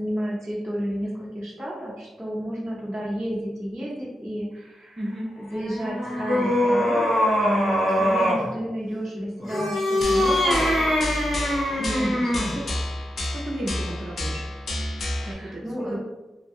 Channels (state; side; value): normal; both; correlation 0.87